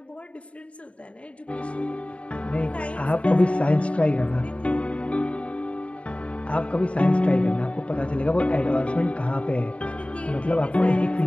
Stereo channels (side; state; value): right; late; 0.062 ms